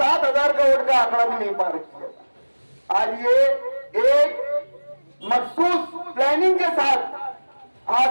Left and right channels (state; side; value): inverted; both; correlation -1.00